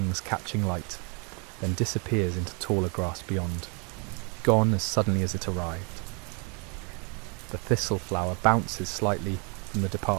catching light, then disappears into taller grass beyond, gone as suddenly as it arrived. The thistle flower bounces slightly from the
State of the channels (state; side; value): quieter; left; 33.9 dB